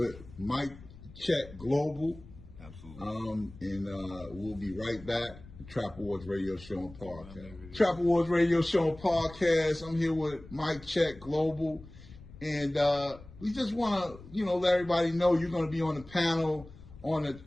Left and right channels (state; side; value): noise; left; rumble, 18 dB below the sound